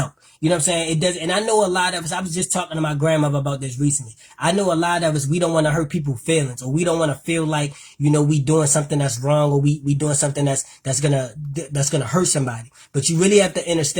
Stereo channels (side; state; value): both; identical; correlation 1.00